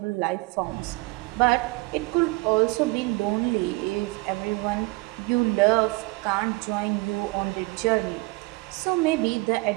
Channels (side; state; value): left; quieter; 24.9 dB